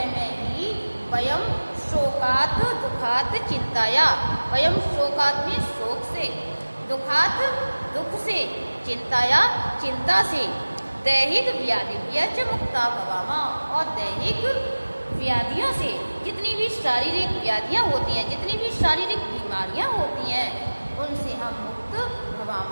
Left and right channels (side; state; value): both; inverted; correlation -1.00